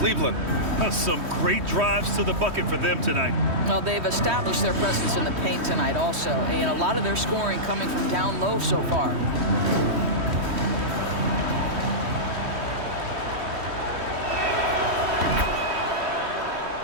Some great drives to the bucket for them tonight. Well, they've established their presence in the paint tonight also, and a lot of their scoring coming from down low so far.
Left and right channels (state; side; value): late; left; 3.1 ms